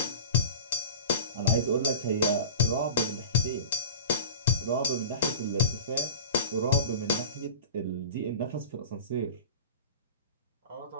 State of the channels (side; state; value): both; inverted; correlation -0.34